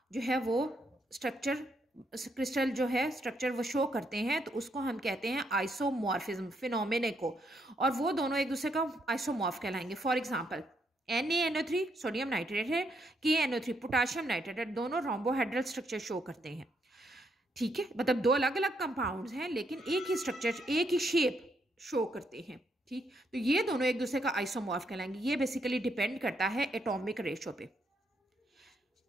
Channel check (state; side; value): normal; both; correlation 0.76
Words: जो है वो स्ट्रक्चर क्रिस्टल जो है स्ट्रक्चर वो शो करते हैं, तो उसको हम कहते हैं आइसोमॉर्फिज्म फिनोमेने को, और वो दोनों एक दूसरे का आइसोमॉर्फ कहलाएंगे। For example NaNO3 sodium nitrate है, KNO3 पोटाशियम नाइट्रेट है, दोनों रोम्बोहेड्रल स्ट्रक्चर शो करते हैं। ठीक है, मतलब 2 अलग अलग कंपाउंड्स हैं लेकिन एक ही स्ट्रक्चर, एक ही शेप शो करते हैं। ठीक, तो ये दोनों एक दूसरे का आइसोमॉर्फ कहलाएंगे। ये बेसिकली डिपेंड करता है एटॉमिक रेशो पे।